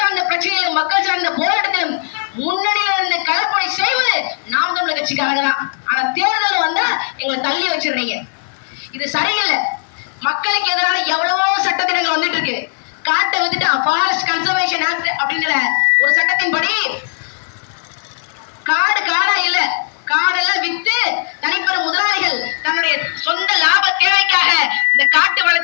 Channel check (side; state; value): right; silent; 55 dB below the other